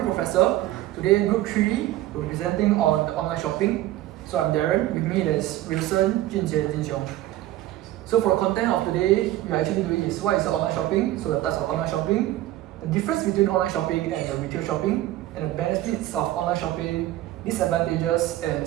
Professor. Today, Group 3, we're presenting on the online shopping. So I'm Darren. With me there's Wilson, Junjie, and Jin Xiong. So for the content of today, we're actually doing is what is the online shopping, so the types of online shopping, the difference between online shopping and the retail shopping, and the benefits of online shopping, disadvantages,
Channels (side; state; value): left; quieter; 15.1 dB